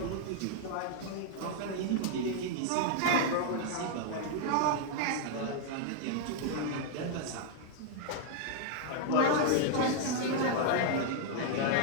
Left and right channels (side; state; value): both; different; correlation -0.01